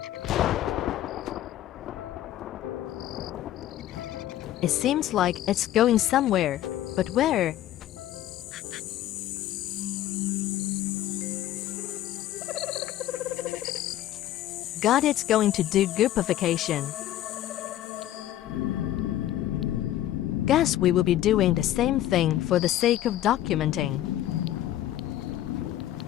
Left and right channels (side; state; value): right; quieter; 13.1 dB